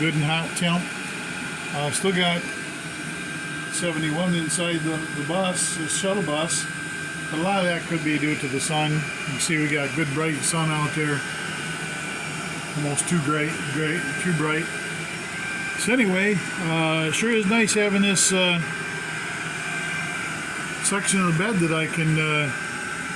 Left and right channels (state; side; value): identical; both; correlation 1.00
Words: and hot temp. Still got 71 inside the bus, the shuttle bus, but a lot of that could be due to the sun. You can see we got good bright sun out there, almost too bright. So anyway, sure is nice having this section of the bed that I can